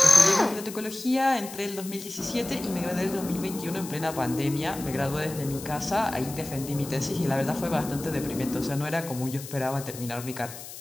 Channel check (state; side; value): noise; left; hiss, 13 dB below the sound